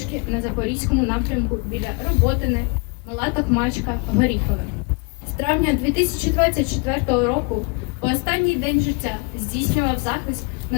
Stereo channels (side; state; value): right; quieter; 33.5 dB